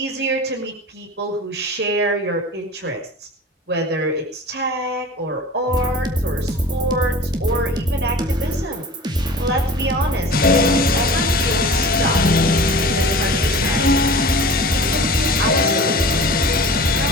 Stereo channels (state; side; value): normal; both; correlation 0.39